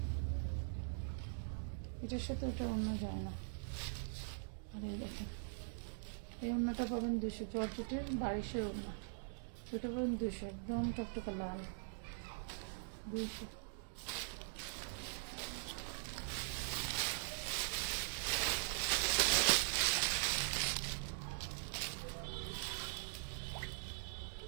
এটার সাথে ওটা ওড়না যায় না। আর এই দেখেন, এই ওড়নাটা পাবেন 200। জর্জেটের 2200 ওড়না, সেটা পাবেন 200। একদম টকটকা লাল, 200।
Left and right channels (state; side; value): silent; left; digital silence